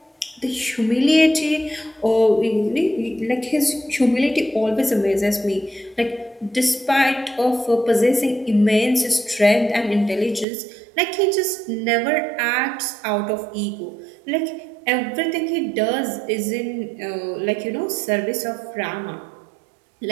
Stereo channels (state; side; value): drops out; left; at 10.5 s